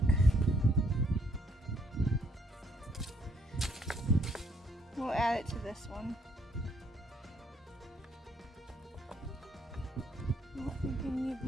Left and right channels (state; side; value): normal; both; correlation 0.68